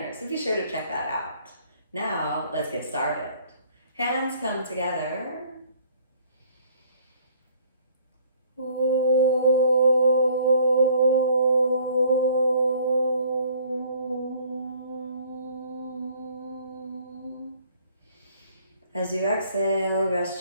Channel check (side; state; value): both; inverted; correlation -0.57